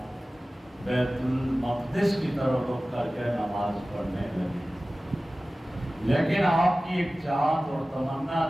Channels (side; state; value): both; normal; correlation 0.97